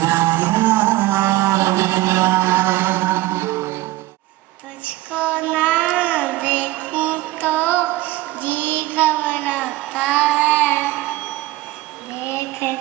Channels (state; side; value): quieter; left; 17.5 dB